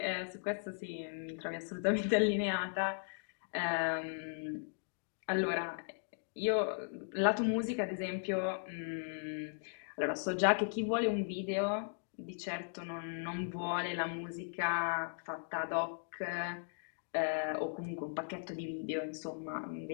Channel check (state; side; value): silent; right; digital silence